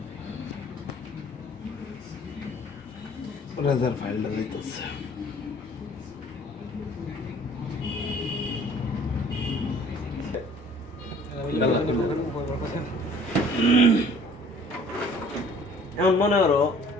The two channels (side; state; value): both; normal; correlation 0.53